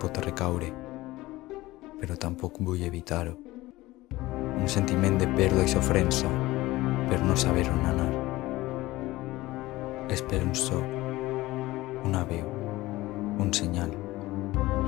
recaure, però tampoc vull evitar-ho. Un sentiment de pèrdua i sofrença per no saber on anar. Espero un so, una veu, un senyal,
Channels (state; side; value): quieter; right; 18.5 dB